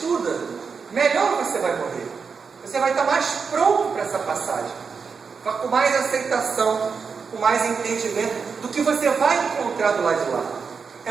melhor você vai morrer. Você vai estar mais pronto para essa passagem, com mais aceitação, com mais entendimento do que você vai encontrar do lado de lá.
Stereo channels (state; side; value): quieter; left; 5.5 dB